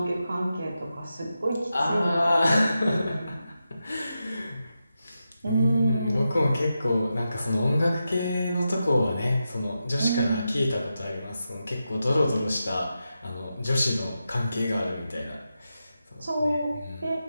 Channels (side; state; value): both; inverted; correlation -0.89